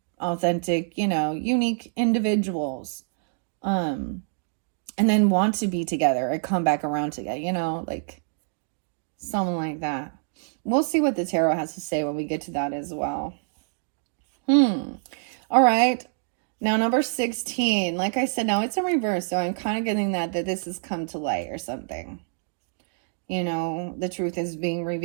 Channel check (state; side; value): silent; left; digital silence